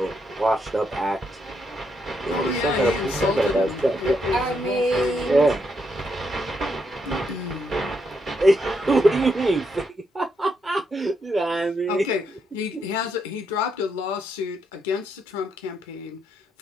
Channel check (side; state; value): both; normal; correlation 0.78